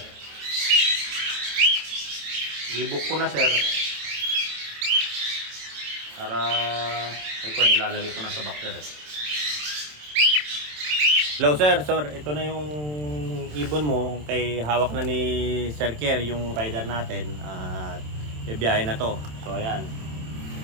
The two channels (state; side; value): late; left; 27 ms